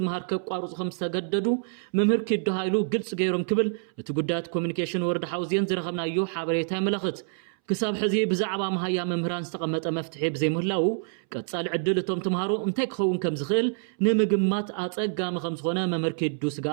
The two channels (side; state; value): left; silent; 60 dB below the other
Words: ከቋርጹ ከም ዝተገደዱ መምህር ኪድ ሃይሉ ግልጽ ገይሮም ክብል እቲ ጉዳያት ኮሙኒኬሽን ወረዳ ሓውዜን ዝረኸብናዮ ሓበሬታ ይመላኽት ክሳብ ሕዚ ብዛዕባ መሃያ መምህራን ዝተቐመጠ መፍትሒ ብዘይምህላው ቀጻሊ ዕድል እቶም ተምሃሮ እንታይ ክኸውን ከም ዝኽእል ንምግማት ኣጸጋሚ ከም ዝኾነ መምህር ኪዱ